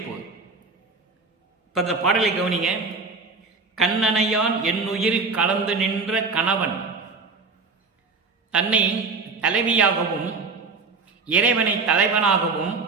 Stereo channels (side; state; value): left; quieter; 4.2 dB